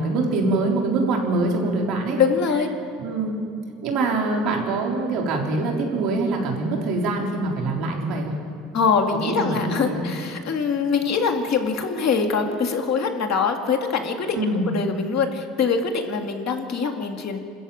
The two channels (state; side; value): normal; both; correlation 0.32